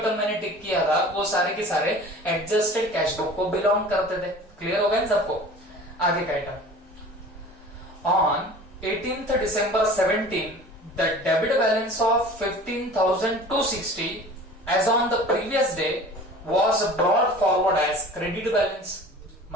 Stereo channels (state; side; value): normal; both; correlation 0.42